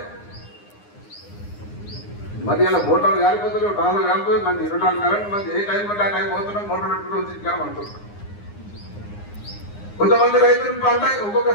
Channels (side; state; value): right; late; 9.7 ms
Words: మరి అలా మోటార్లు గాలిపోతున్నాయి, ట్రాన్స్ఫార్మర్ గాలిపోతుంది. మంది 24 కరెంట్, మంది ఏ టైం అంటే ఆ టైం పోతున్నాం, మోటార్ పెట్టుకుంటూ వచ్చి అనుకుంటున్నాం. కొంతమంది రైతులు పంట ఒక్కొక్క